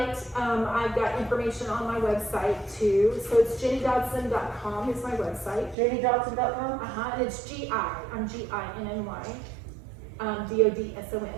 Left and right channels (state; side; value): drops out; left; at 5.8 s